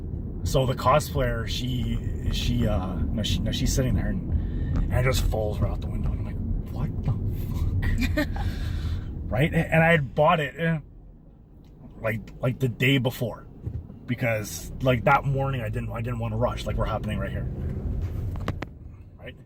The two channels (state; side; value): identical; both; correlation 1.00